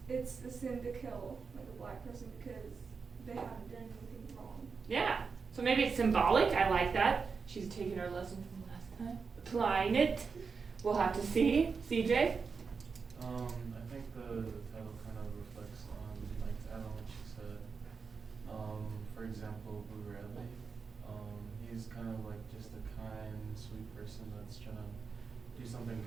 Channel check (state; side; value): quieter; left; 5.2 dB